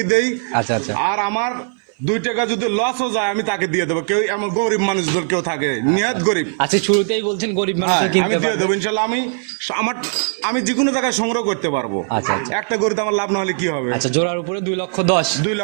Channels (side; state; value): left; silent; 57 dB below the other